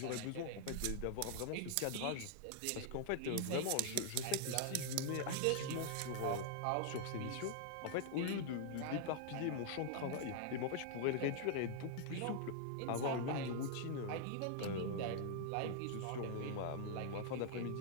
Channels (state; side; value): different; both; correlation -0.01